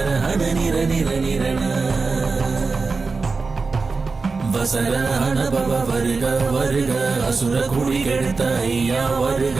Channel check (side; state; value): left; quieter; 4.3 dB